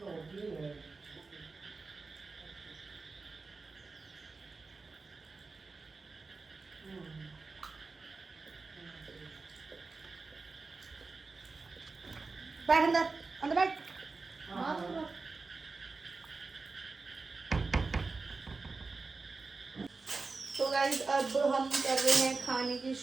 बैठ अंदर, अंदर बैठ। तो गाइस अब हम कर रहे हैं खाने की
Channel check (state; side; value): quieter; left; 4.0 dB